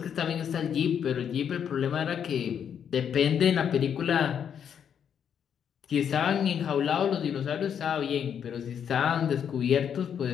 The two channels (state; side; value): quieter; right; 8.2 dB